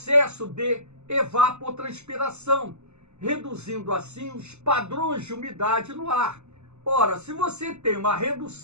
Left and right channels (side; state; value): left; late; 0.82 ms